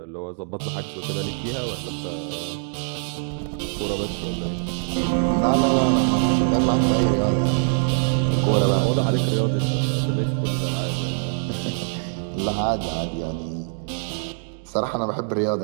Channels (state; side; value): silent; left; 63 dB below the other